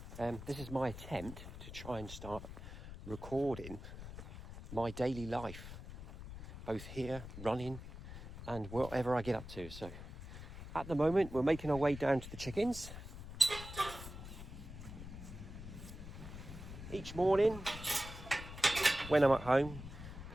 This is my attempt to try and start recording my daily life, both here, running, and whatever I get up to. So at the moment, we're making our way down to the chickens. Each morning, when I'm at home,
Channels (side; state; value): left; noise; rumble, 11 dB below the sound